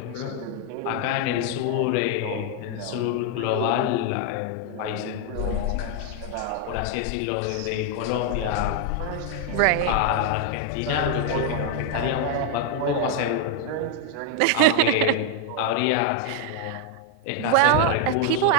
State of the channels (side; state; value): both; different; correlation 0.00